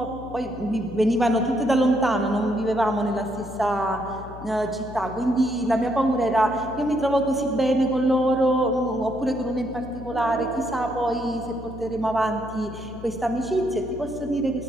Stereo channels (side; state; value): left; noise; hum, 15 dB below the sound